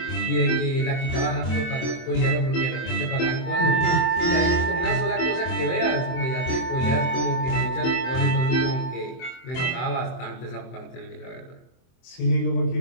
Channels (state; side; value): late; right; 24 ms